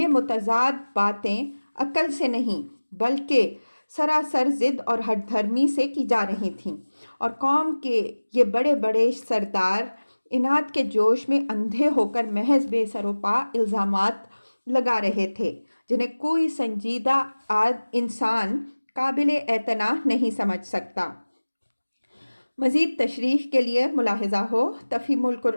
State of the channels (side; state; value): both; inverted; correlation -1.00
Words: متضاد باتیں عقل سے نہیں بلکہ سراسر ضد اور ہٹ دھرمی سے کی جا رہی تھیں، اور قوم کے یہ بڑے بڑے سردار اناد کے جوش میں اندھے ہو کر محض بے سر و پا الزامات لگا رہے تھے جنہیں کوئی سنجیدہ انسان قابل اعتناء نہیں سمجھ سکتا۔ مزید تشریح کے لیے ملاحظہ ہو تفہیم